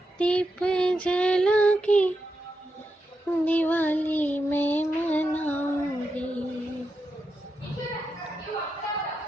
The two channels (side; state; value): both; normal; correlation 0.87